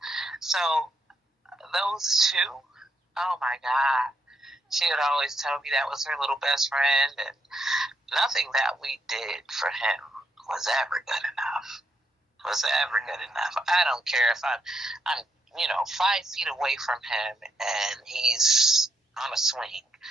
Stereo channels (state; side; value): normal; both; correlation 0.78